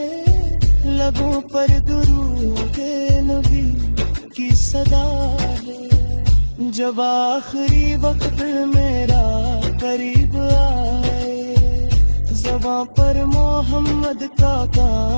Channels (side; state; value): both; inverted; correlation -1.00